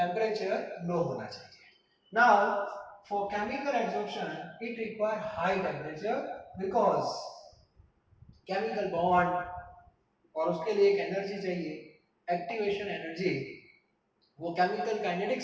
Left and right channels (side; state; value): both; identical; correlation 1.00